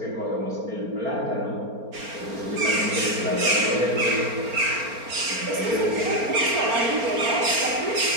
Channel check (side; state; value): left; late; 4.3 ms